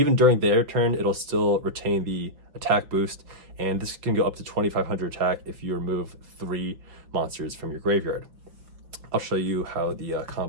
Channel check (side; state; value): left; late; 5.9 ms